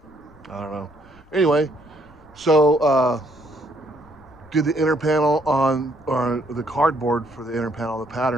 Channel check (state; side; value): noise; left; rumble, 28 dB below the sound